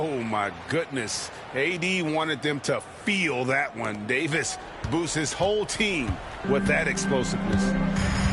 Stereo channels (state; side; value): identical; both; correlation 1.00